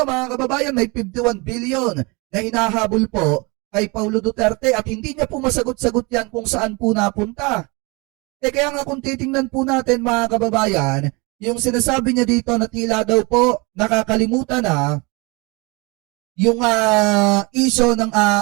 mga kababayan, may 51 billion na hinahabol po kay Paulo Duterte at hindi niya po masagot-sagot yan kung saan po napunta. Kaya nga kung titingnan po natin mga kababayan, yung sinasabi niya dito na tila daw po nakakalimutan na yung issue ng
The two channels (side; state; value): left; quieter; 27.8 dB